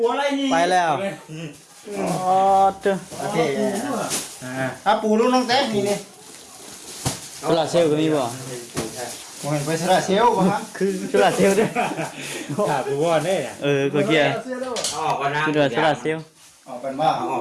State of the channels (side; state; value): both; identical; correlation 1.00